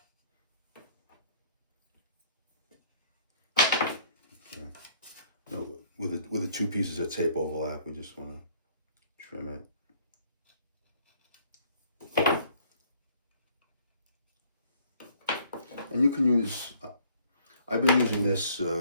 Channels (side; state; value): both; inverted; correlation -0.60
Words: Okay. No, with the two pieces of tape overlap, we just want to trim it. And you can use, I've been using this,